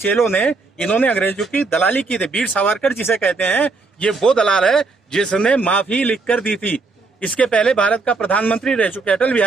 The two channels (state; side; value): quieter; left; 3.9 dB